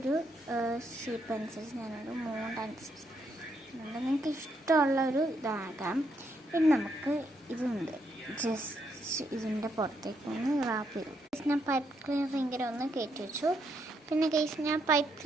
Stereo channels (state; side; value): normal; both; correlation 0.77